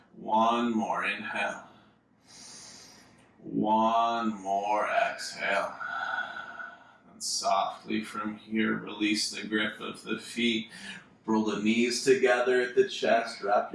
One more inhale. One more exhale. And softly from here, release the grip of the feet. Roll the knees together at the chest. Wrap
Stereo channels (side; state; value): both; identical; correlation 1.00